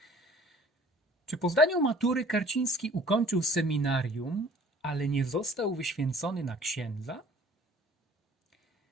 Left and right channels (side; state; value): both; normal; correlation 0.51